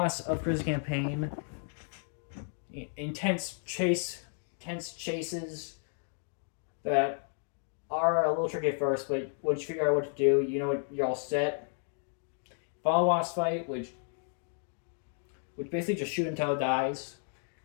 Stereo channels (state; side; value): silent; right; 56 dB below the other